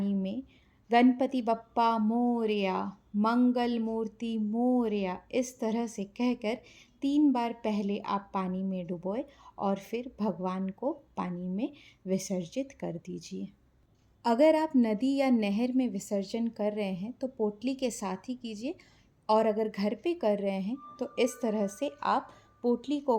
में गणपति बप्पा मोरया, मंगल मूर्ति मोरया, इस तरह से कहकर 3 बार पहले आप पानी में डुबोए और फिर भगवान को पानी में विसर्जित कर दीजिए। अगर आप नदी या नहर में विसर्जन कर रहे हैं तो पोटली के साथ ही कीजिए और अगर घर पे कर रहे हैं तो इस तरह से आप पोटली को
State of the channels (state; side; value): identical; both; correlation 1.00